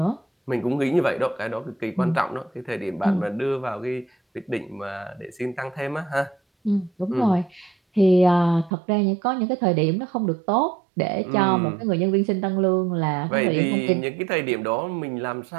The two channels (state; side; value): drops out; left; at 8.7 s